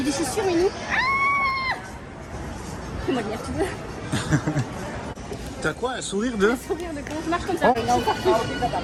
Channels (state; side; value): identical; both; correlation 1.00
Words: y a des chaussures, mais nous. Comment dire, tu veux? T'as quoi, un sourire de... Sourire de comment je marche comme ça.